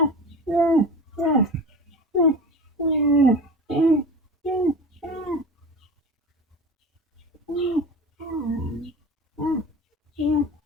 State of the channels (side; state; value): both; normal; correlation 0.33